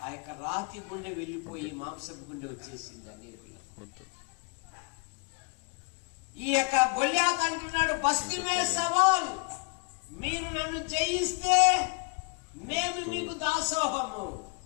ఆ యొక్క రాతి గుండె వెళ్ళిపోయి మాంసపు గుండె వచ్చేసింది అనేది. ఈ యొక్క గొల్యాతు అంటున్నాడు బస్తీ మే సవాల్, మీరు నన్ను జయిస్తే మేము మీకు దాసోహము,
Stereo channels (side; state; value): right; quieter; 33.0 dB